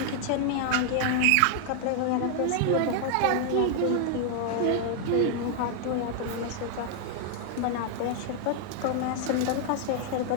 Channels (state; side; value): different; both; correlation 0.00